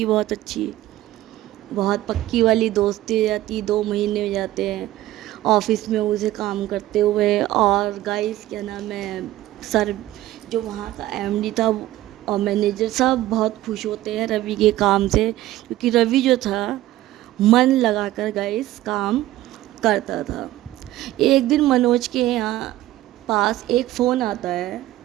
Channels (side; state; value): left; quieter; 15.3 dB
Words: बहुत अच्छी, बहुत पक्की वाली दोस्ती हो जाती। 2 महीने हो जाते हैं ऑफिस में उसे काम करते हुए। और गाइस, क्या नाम है, सर जो वहाँ का एमडी था और मैनेजर सब बहुत खुश होते हैं रवि के काम से, क्योंकि रवि जो था मन लगाकर गाइस काम करता था। एक दिन मनोज के यहाँ पास एक फ़ोन आता है